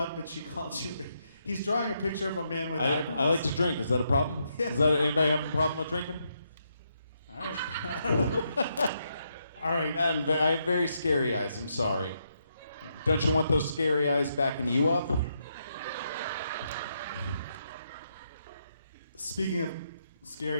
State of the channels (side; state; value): both; inverted; correlation -0.79